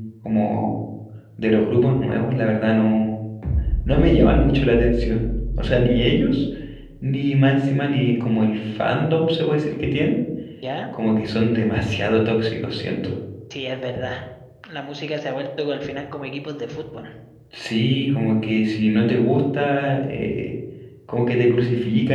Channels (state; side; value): identical; both; correlation 1.00